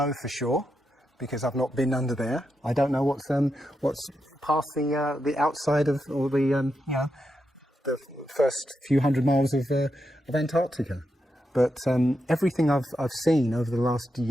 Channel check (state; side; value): normal; both; correlation 0.85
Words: for sure, because I've not been under there. I don't know what's past the outside of, or the you know, the first few hundred miles of Antarctica. But everything I've seen over the last